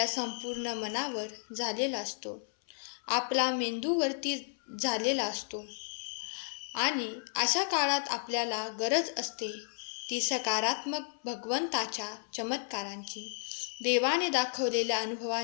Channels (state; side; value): silent; right; 56 dB below the other